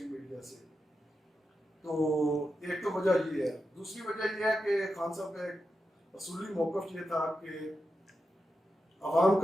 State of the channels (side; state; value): both; normal; correlation 0.88